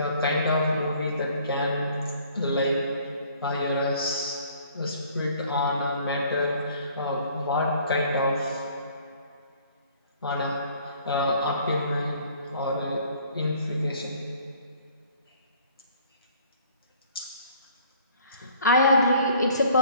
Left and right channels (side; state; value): both; inverted; correlation -0.56